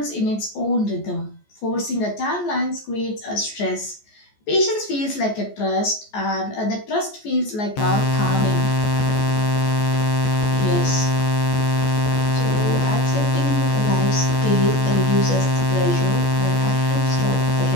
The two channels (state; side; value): late; right; 14 ms